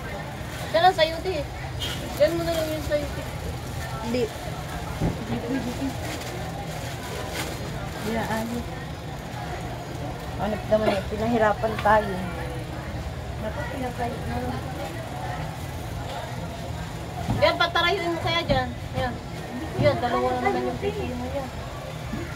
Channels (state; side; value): identical; both; correlation 1.00